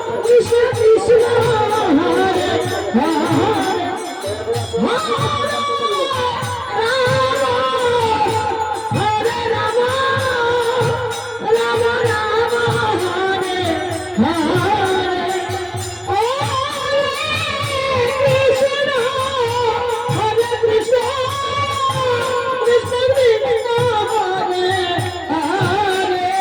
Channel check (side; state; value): both; identical; correlation 1.00